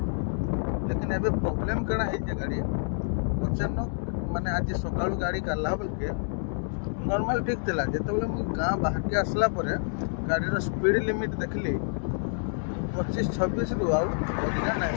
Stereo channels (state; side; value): silent; right; digital silence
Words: लेकिन एवं प्रोब्लेम कण है गाड़ी अचानक माने आज सका गाड़ी काला बेलके नॉर्मल ठीक थिला जो गाँ बाहर के आसला परे गाड़ी स्पीड लिमिट देखली 25-26 रु अधिका ना है